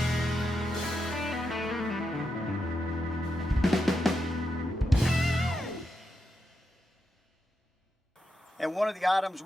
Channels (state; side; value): normal; both; correlation 0.85